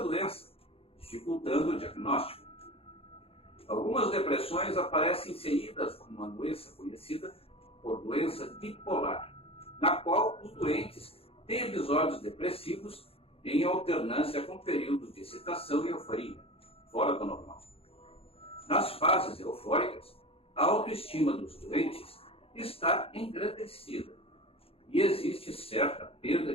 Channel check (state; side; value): late; right; 0.28 ms